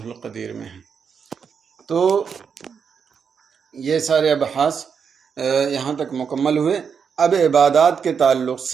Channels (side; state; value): left; quieter; 6.5 dB